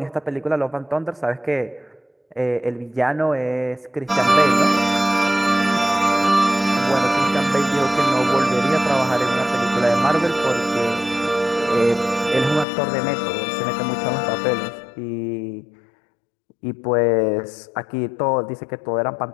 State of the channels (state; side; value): drops out; right; at 12.7 s